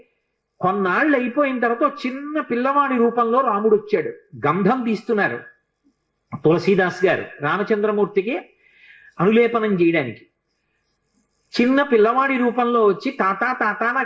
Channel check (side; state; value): both; identical; correlation 1.00